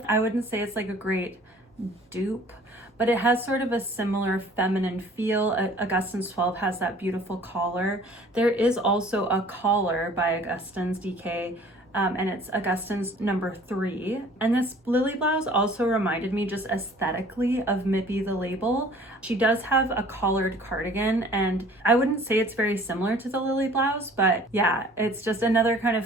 I wouldn't say it's like a great dupe, but it has sort of a similar feminine feel. Augustins 12 has that beautiful collar. There is also a collar by Augustins DK, and it's Augustins number 3. And this Lilly blouse also reminded me just aesthetically of Mipi the label. She does have a collared cardigan, and I wouldn't say it's very similar to the Lilly blouse, but yeah, it's just another kind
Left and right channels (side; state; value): both; normal; correlation 0.51